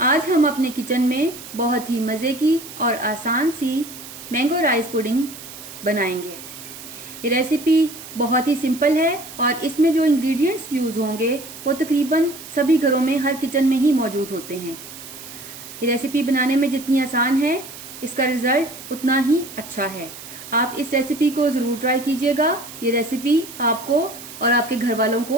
आज हम अपने किचन में बहुत ही मज़े की और आसान सी मैंगो राइस पुडिंग बनाएंगे। ये रेसिपी बहुत ही सिंपल है और इसमें जो इंग्रेडिएंट्स यूज़ होंगे वो तकरीबन सभी घरों में, हर किचन में ही मौजूद होते हैं। ये रेसिपी बनाने में जितनी आसान है, इसका रिज़ल्ट उतना ही अच्छा है। आप इस रेसिपी को ज़रूर ट्राई कीजिएगा। ये रेसिपी आपको और आपके घर वालों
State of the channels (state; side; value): noise; right; hiss, 14 dB below the sound